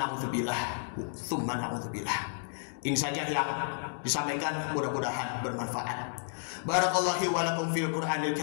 tsumma na'udzubillah. Ini saja yang disampaikan, mudah-mudahan bermanfaat. Barakallahu wa lakum fil Qur'anil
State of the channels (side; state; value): right; silent; digital silence